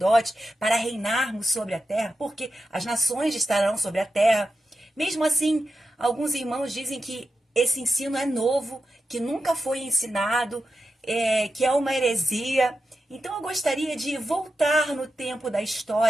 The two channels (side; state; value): both; normal; correlation 0.89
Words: para reinarmos sobre a terra, porque as nações estarão sobre a terra. Mesmo assim, alguns irmãos dizem que esse ensino é novo, que nunca foi ensinado, que é uma heresia. Então eu gostaria de voltar no tempo da